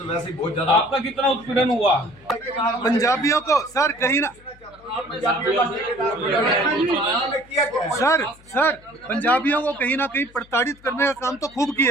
वैसे ही बहुत ज्यादा। आपका कितना उत्पीड़न हुआ? पंजाबियों को सर कहीं ना सर पंजाबियों को कहीं ना कहीं प्रताड़ित करने का काम तो खूब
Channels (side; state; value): left; noise; hum, 26 dB below the sound